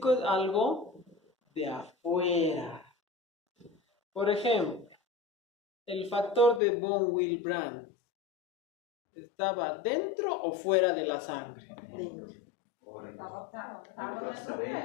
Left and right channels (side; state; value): right; drops out; at 6.6 s